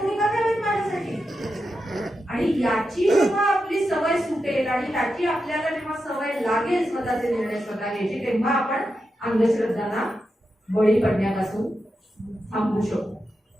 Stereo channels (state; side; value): normal; both; correlation 0.88